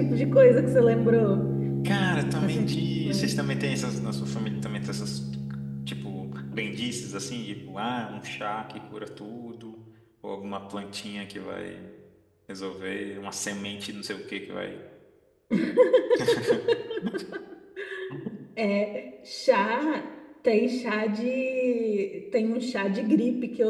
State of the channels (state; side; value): identical; both; correlation 1.00